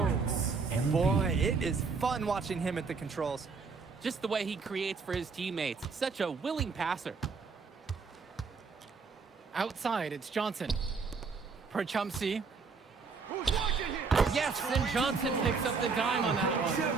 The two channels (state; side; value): quieter; left; 4.9 dB